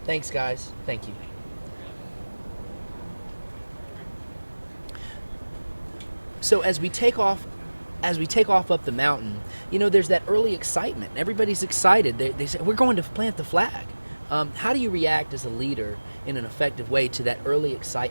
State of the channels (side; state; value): both; inverted; correlation -1.00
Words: Thanks, guys. Thank you. So as we take off up the mountain, there's that early excitement. Everybody's excited. They say, we're going to plant the flag. How do you react as a leader in an effective way to that early